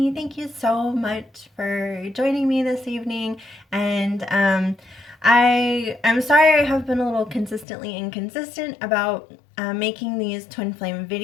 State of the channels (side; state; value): right; drops out; at 7.7 s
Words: Thank you so much for joining me this evening. And I'm sorry I have been a little consistently inconsistent about making these twin flame